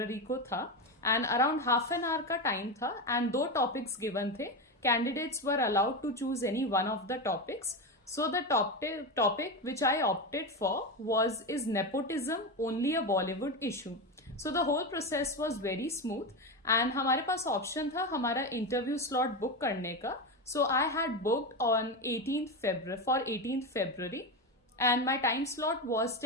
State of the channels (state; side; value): normal; both; correlation 0.16